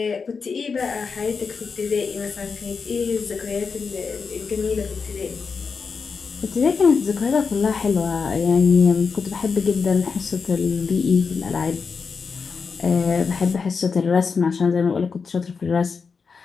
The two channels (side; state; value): right; quieter; 5.3 dB